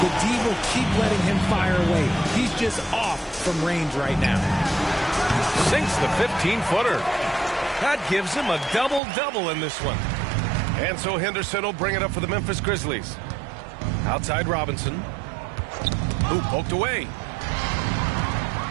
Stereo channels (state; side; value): drops out; left; at 9.0 s